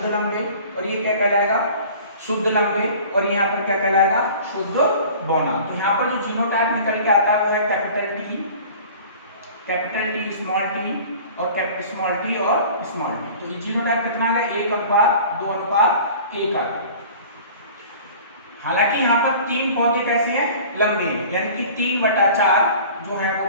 लंबे, और ये क्या कहलाएगा, शुद्ध लंबे, और यहाँ पर क्या कहलाएगा, शुद्ध बौना। तो यहाँ पर जो जीनोटाइप निकल के आता है वो है कैपिटल T स्मॉल t और स्मॉल t और स्मॉल t। तो ये जीनोटाइप कितना है, 1:2:1 आ गया। हालांकि यहाँ पर 3 पौधे कैसे हैं, लंबे, यानी कि 3/4 जो है वो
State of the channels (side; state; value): both; inverted; correlation -0.44